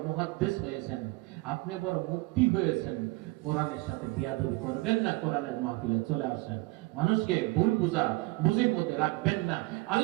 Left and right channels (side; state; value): left; quieter; 22.4 dB